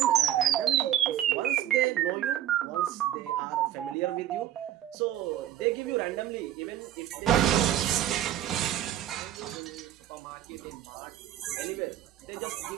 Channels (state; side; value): quieter; left; 12.0 dB